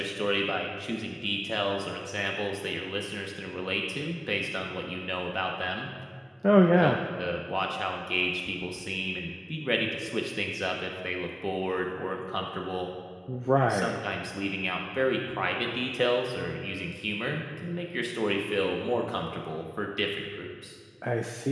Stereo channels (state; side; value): identical; both; correlation 1.00